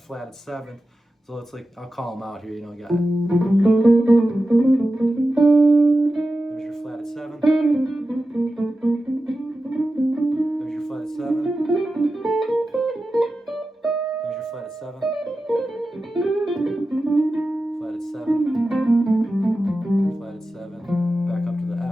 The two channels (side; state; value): both; normal; correlation 0.93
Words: 7th. So it's like, I'll call them out here, you know, you got it. There's your flatted 7th. There's your flatted 7th. Flatted 7, flatted 7, flatted 7, back up to the